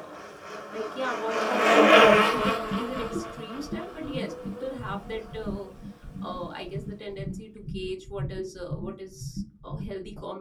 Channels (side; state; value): both; identical; correlation 1.00